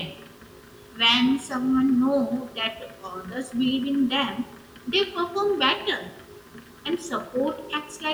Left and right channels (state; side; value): identical; both; correlation 1.00